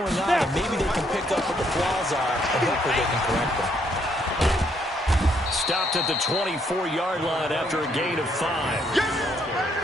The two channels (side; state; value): both; normal; correlation 0.71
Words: on. And maybe they can pick up what the flaws are and hopefully they can correct them. Stopped at the 24-yard line after a gain of 5.